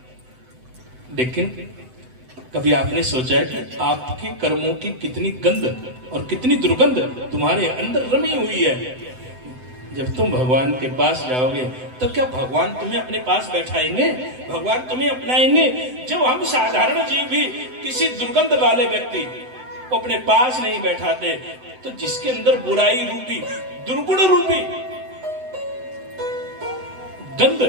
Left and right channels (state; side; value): late; left; 7.9 ms